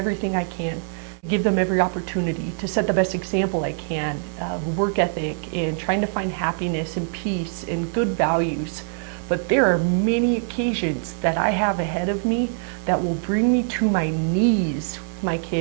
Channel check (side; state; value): left; silent; 63 dB below the other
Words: I can, give them every opportunity to set the best example I can, work ethic and trying to find happiness and peace and good values. But there are many occasions that I have ahead of me that will bring me to my knees, my